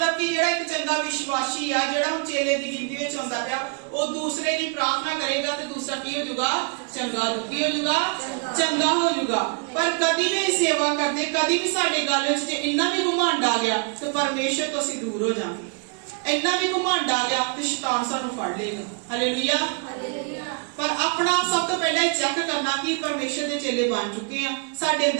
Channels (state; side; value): quieter; left; 38.6 dB